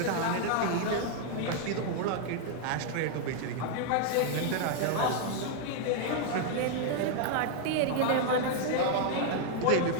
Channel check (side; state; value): both; different; correlation 0.00